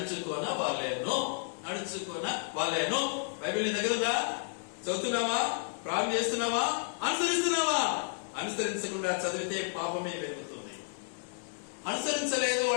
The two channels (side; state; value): right; silent; digital silence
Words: వాళ్ళేను. బైబిల్ నీ దగ్గర ఉందా? చదువుతున్నావా? ప్రారంభం చేస్తున్నావా? అనుసరిస్తున్నావా? అనుసరించకుండా చదివితే పాపమే పెరుగుతుంది. అనుసరించలేదు